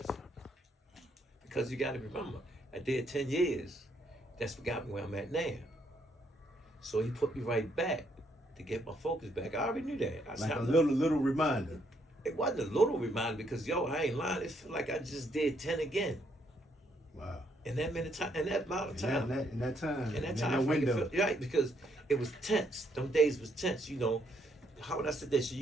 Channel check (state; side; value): normal; both; correlation 0.72